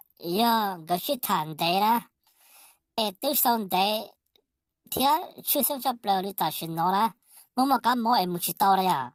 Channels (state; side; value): identical; both; correlation 1.00